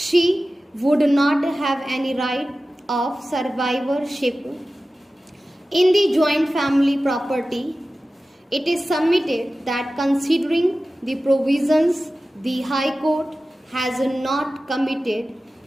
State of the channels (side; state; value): both; normal; correlation 0.95